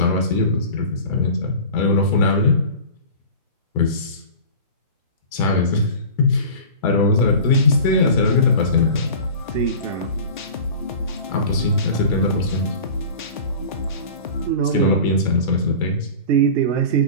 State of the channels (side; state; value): both; inverted; correlation -0.37